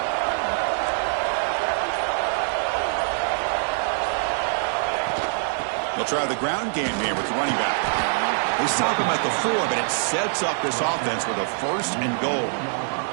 They'll try the ground game here with the running back. They stop him at the 4, but it sets up this offense with a 1st and goal.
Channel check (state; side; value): silent; left; 62 dB below the other